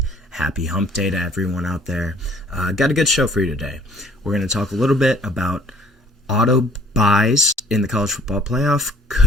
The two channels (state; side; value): normal; both; correlation 0.57